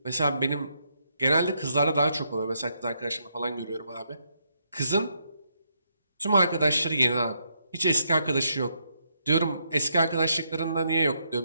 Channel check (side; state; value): both; inverted; correlation -0.77